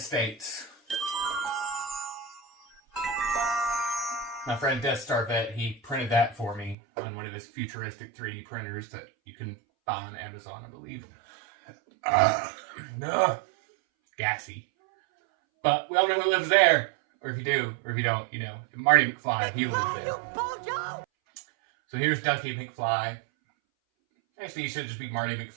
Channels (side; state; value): left; drops out; at 6.8 s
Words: My friend Death Star Vet, he printed that for me on one of his futuristic 3D printers that you can buy on Amazon, I believe. Gassy. But we all know who lives there. Or if you do, or if you don't, you know. Marty McFly, he lives there. So here's Ducky McFly. Actually, he should just be Marty